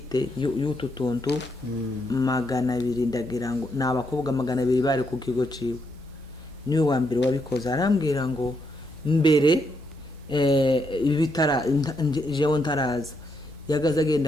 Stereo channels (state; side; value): normal; both; correlation 0.78